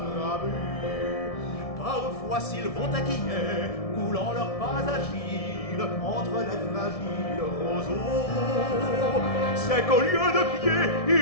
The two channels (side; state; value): right; late; 1.7 ms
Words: Parfois s'ils vont taquiner, coulant leurs pas agiles entre les fragiles roseaux, c'est qu'au lieu de pieds,